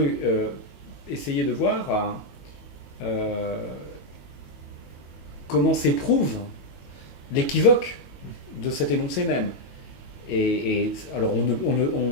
essayer de voir comment s'éprouve l'équivoque de cet énoncé même. Et alors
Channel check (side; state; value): right; late; 22 ms